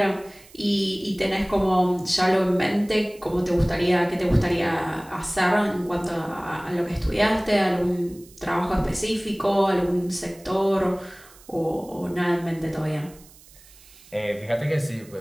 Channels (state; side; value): noise; right; hiss, 24 dB below the sound